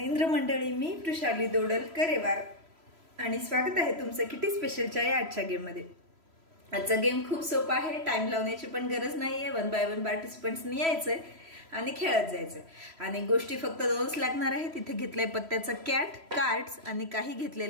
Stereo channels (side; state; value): left; late; 3.0 ms